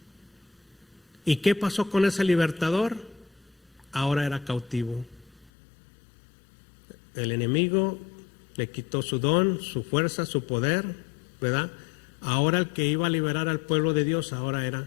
¿Y qué pasó con ese libertador? Ahora era cautivo. El enemigo le quitó su don, su fuerza, su poder, ¿verdad? Ahora el que iba a liberar al pueblo de Dios ahora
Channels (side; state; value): right; drops out; at 5.5 s